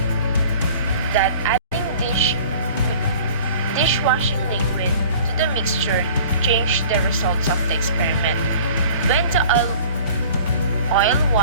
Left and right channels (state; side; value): inverted; both; correlation -0.45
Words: that adding dishwashing liquid to the mixture changed the results of the experiment. When the oil,